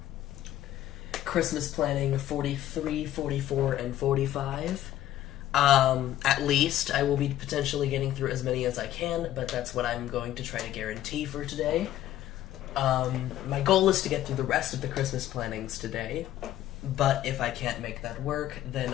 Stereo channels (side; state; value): right; quieter; 13.0 dB